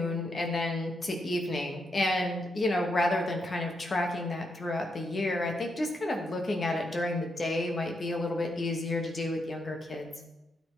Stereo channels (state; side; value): normal; both; correlation 0.81